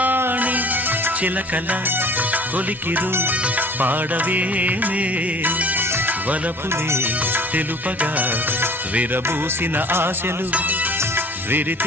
చిలకల కొలికిరు పాడవేమే వలపులే తెలుపగా విరబూసిన ఆశలు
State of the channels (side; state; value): both; normal; correlation 0.48